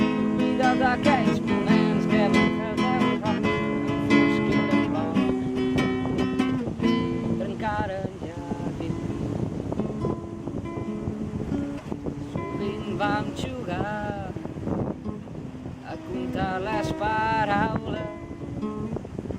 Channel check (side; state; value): both; identical; correlation 1.00